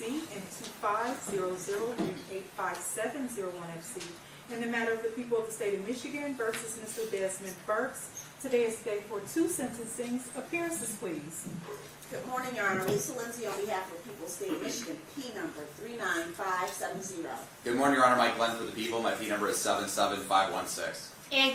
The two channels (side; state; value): both; identical; correlation 1.00